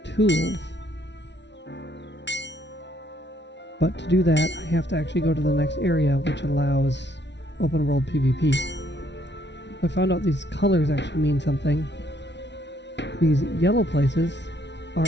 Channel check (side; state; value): right; late; 0.51 ms